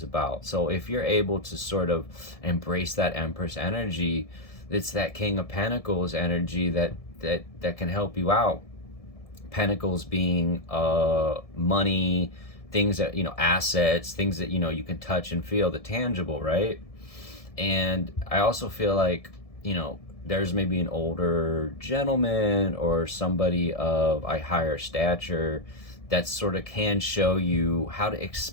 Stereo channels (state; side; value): late; right; 1.7 ms